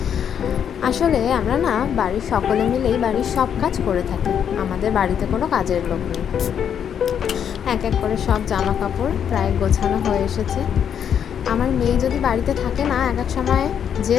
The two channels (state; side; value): quieter; right; 8.4 dB